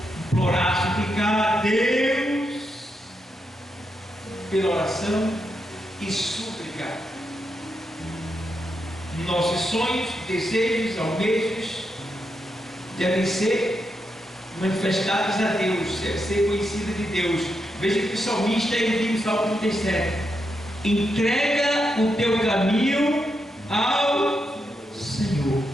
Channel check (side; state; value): both; normal; correlation 0.84